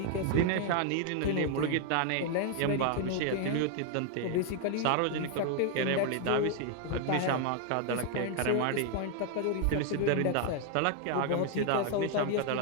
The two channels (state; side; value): different; both; correlation 0.00